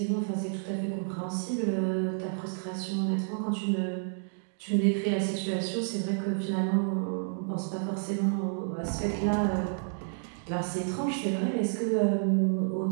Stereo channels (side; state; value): left; silent; digital silence